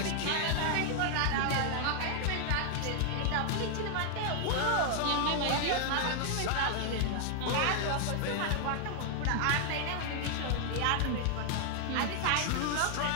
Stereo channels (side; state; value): both; different; correlation 0.00